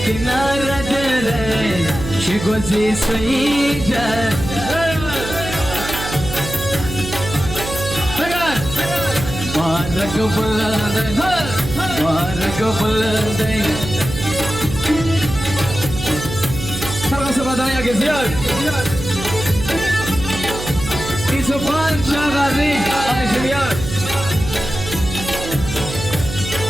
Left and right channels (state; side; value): noise; right; hum, 8 dB below the sound